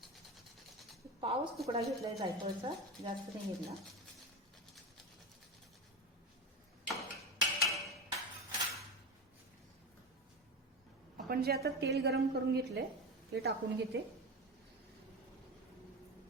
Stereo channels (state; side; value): normal; both; correlation 0.21